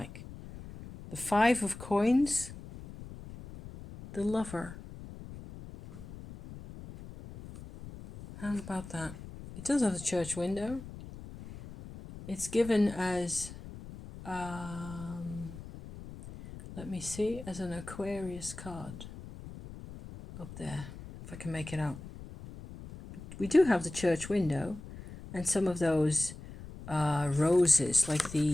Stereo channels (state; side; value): noise; left; rumble, 14 dB below the sound